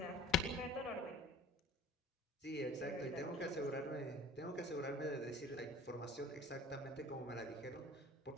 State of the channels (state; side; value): normal; both; correlation 0.46